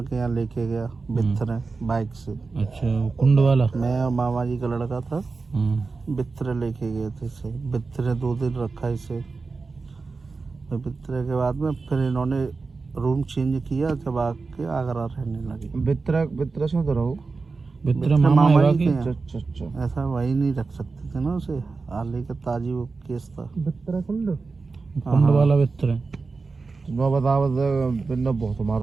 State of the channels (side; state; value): left; quieter; 4.2 dB